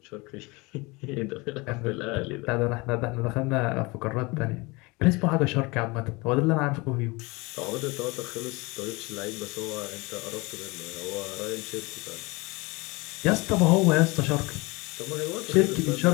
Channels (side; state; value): right; quieter; 25.2 dB